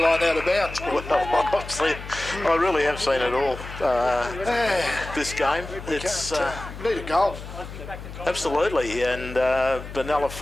out of bounds. Well, I really have seen it all this game. It's need a goal. Absolutely, and Benalla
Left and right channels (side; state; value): left; noise; hum, 12 dB below the sound